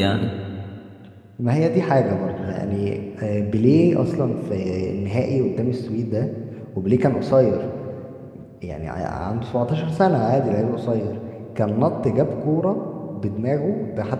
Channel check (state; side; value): identical; both; correlation 1.00